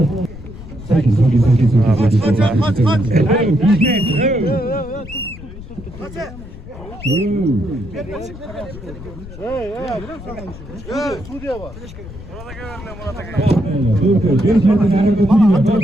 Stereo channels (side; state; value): left; noise; rumble, 14 dB below the sound